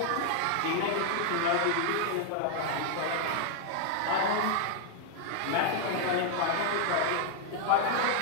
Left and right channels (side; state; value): both; different; correlation 0.00